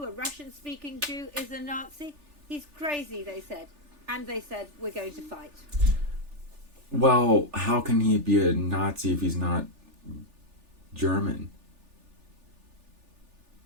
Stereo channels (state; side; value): late; left; 3.4 ms